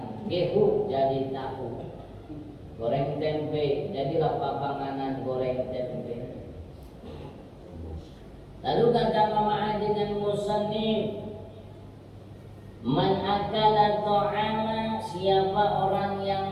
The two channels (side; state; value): both; identical; correlation 1.00